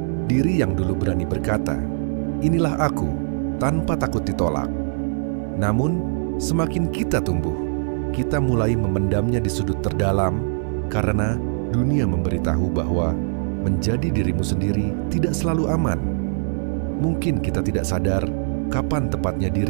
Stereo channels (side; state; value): left; silent; 61 dB below the other